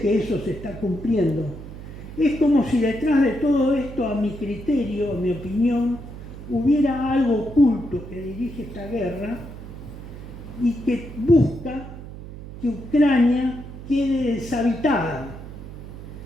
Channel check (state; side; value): noise; right; hum, 12 dB below the sound